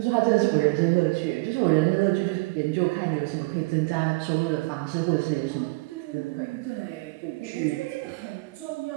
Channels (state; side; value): quieter; left; 25.8 dB